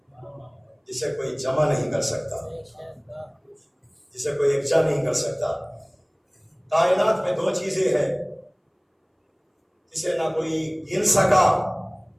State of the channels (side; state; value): both; identical; correlation 1.00